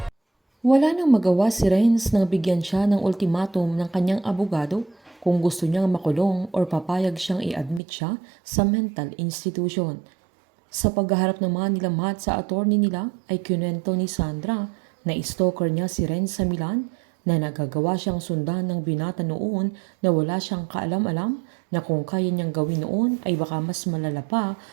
Wala nang magawa si Renz nang bigyan siya ng ultimatum ng kanyang abogado kung gusto niyang makulong or papayag siyang i-admit siya sa mental institution. Sa paghaharap naman nila Matt sa attorney nila ay kinuwento ni Sandra na stalker niya si Renz sa Milan, na nagagawa siyang sundan ng binata noon na wala siyang kaalam-alam na kung kaya niyang gawin noon ay baka mas malala pa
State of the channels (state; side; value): drops out; left; at 7.8 s